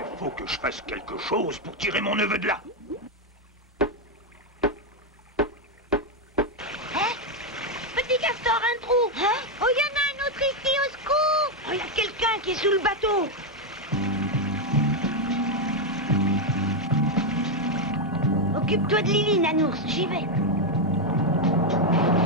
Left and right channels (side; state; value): both; normal; correlation 0.03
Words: faut que je fasse quelque chose pour tirer mon neveu de là. Petit castor, un trou. Hein? Oh, il y en a un autre ici, au secours. Oh, il y a quelqu'un qui est sous le bateau. Occupe-toi de Lily, Nanours, j'y vais.